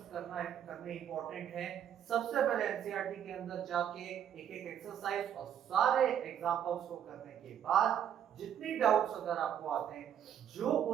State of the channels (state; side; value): quieter; left; 9.6 dB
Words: करने इंपॉर्टेंट है। सबसे पहले एनसीईआरटी के अंदर जाके एक एक एक्सरसाइज और सारे एग्जांपल्स को करने के बाद जितनी डाउट्स अगर आपको आते हैं, जो